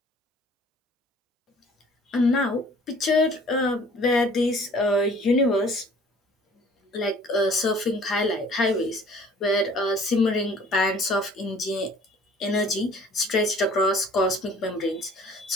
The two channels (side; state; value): both; normal; correlation 0.52